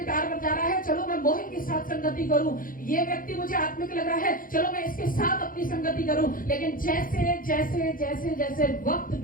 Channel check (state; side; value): late; right; 0.40 ms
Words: बजा रहा है, चलो मैं मोहित के साथ संगति करूं, ये व्यक्ति मुझे आत्मिक लग रहा है, चलो मैं इसके साथ अपनी संगति करूं। लेकिन जैसे जैसे जैसे जैसे वक्त